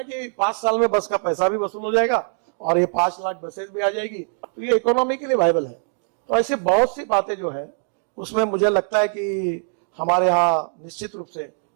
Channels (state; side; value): silent; left; digital silence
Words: कि 5 साल में बस का पैसा भी वसूल हो जाएगा और ये 5 लाख बसेस भी आ जाएगी, तो ये इकोनॉमिकली वायबल है। तो ऐसे बहुत सी बातें जो है उसमें मुझे लगता है कि हमारे यहाँ निश्चित रूप से